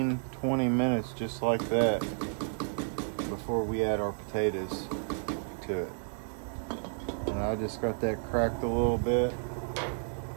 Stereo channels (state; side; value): silent; left; 57 dB below the other